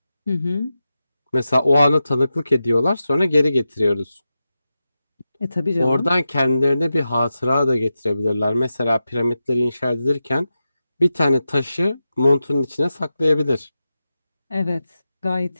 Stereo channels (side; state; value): both; inverted; correlation -0.91